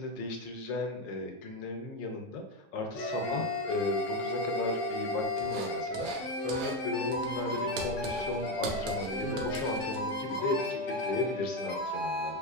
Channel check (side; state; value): both; normal; correlation 0.11